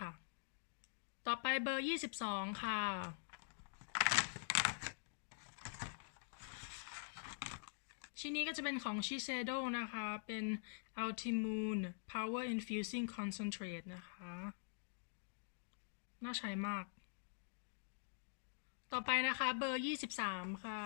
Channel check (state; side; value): silent; right; digital silence